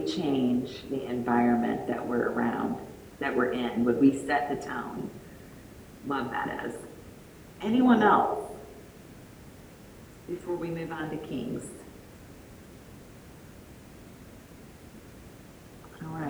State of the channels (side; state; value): both; identical; correlation 1.00